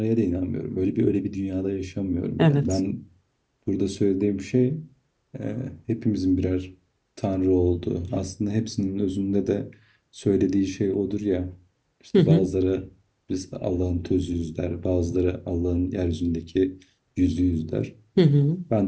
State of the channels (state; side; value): identical; both; correlation 1.00